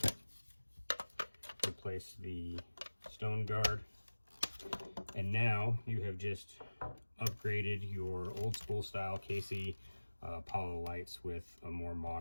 Replace the stone guard. And now you have just upgraded your old school style KC Apollo lights with a more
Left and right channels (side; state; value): both; inverted; correlation -1.00